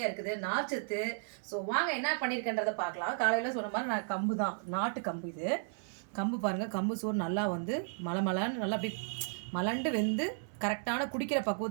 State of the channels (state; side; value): silent; left; 55 dB below the other